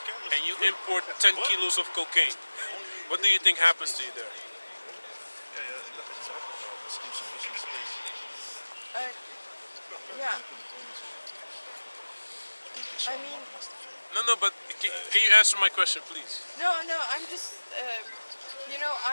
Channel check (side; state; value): both; inverted; correlation -1.00